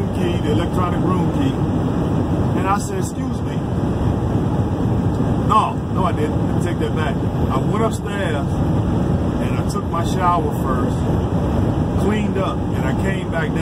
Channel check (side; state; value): both; identical; correlation 1.00